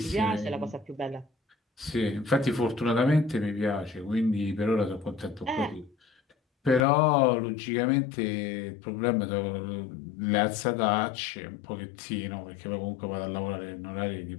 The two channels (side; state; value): right; drops out; at 6.9 s